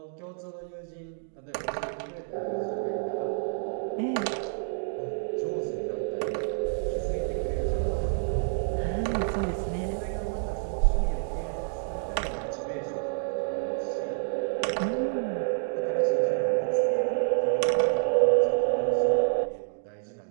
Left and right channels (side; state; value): left; silent; digital silence